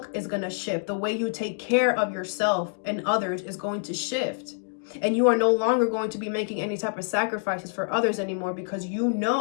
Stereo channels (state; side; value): silent; right; digital silence